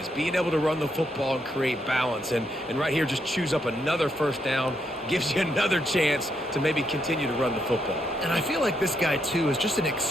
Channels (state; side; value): normal; both; correlation 0.78